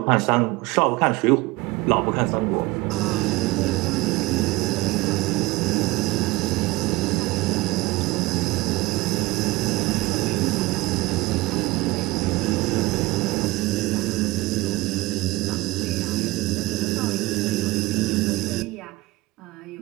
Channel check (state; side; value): quieter; left; 19.9 dB